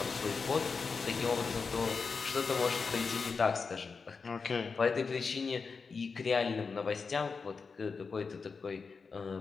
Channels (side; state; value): right; quieter; 5.0 dB